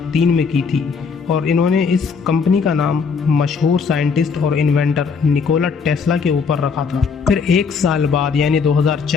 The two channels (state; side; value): quieter; right; 5.5 dB